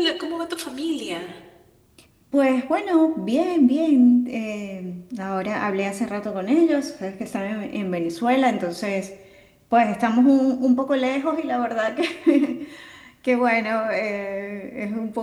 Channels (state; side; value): identical; both; correlation 1.00